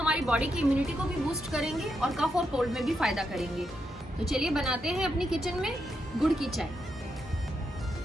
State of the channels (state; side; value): normal; both; correlation 0.83